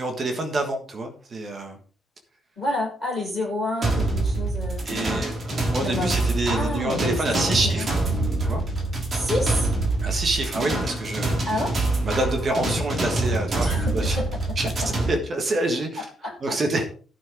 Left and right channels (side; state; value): both; normal; correlation 0.77